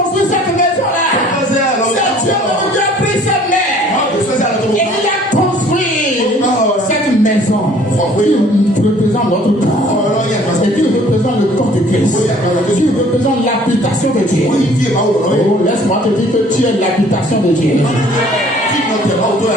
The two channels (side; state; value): both; normal; correlation 0.55